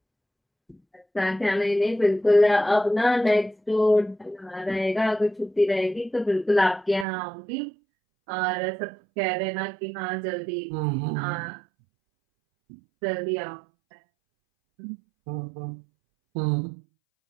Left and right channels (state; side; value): drops out; left; at 7.1 s